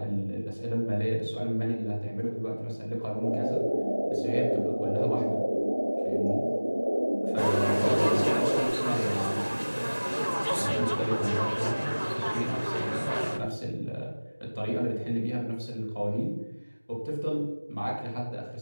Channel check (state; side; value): inverted; both; correlation -1.00